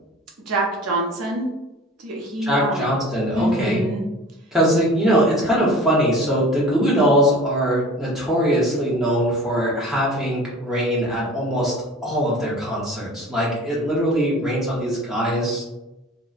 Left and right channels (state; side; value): normal; both; correlation 0.41